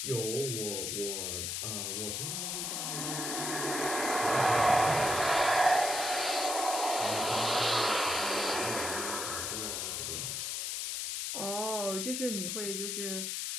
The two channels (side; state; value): left; noise; hiss, 2 dB below the sound